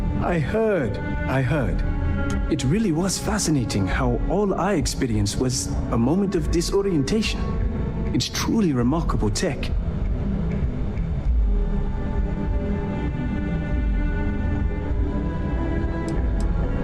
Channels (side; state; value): both; identical; correlation 1.00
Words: I heard. It really was fascinating how all I experienced was a moment of disorientation. It's truly remarkable tech.